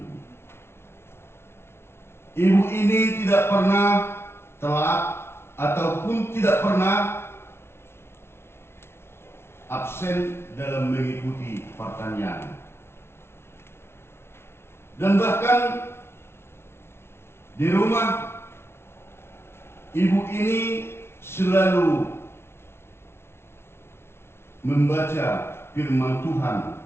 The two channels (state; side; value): late; right; 0.12 ms